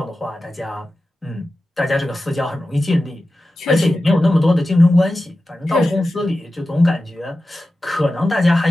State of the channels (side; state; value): both; normal; correlation 0.94